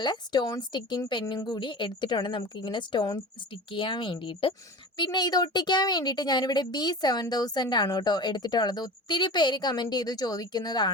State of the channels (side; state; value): both; normal; correlation 0.33